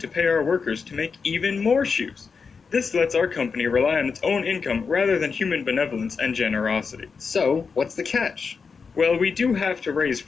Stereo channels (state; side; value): quieter; right; 5.3 dB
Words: pay our workers to make even more shoes. This lets our company rely on its own income rather than human benevolence and generosity. So, what's the catch? Well, we do have to raise